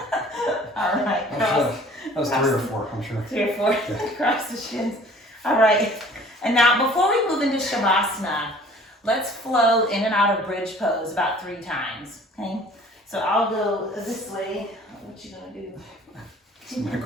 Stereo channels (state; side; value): normal; both; correlation 0.51